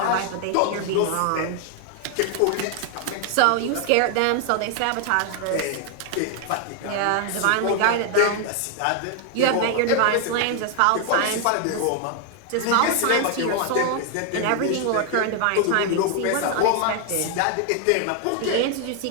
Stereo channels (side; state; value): both; different; correlation 0.00